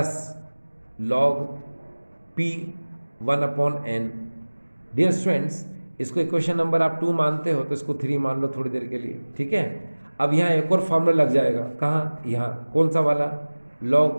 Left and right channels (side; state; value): both; inverted; correlation -1.00